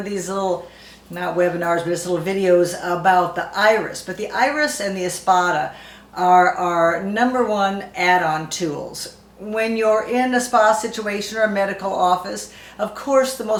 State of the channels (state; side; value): identical; both; correlation 1.00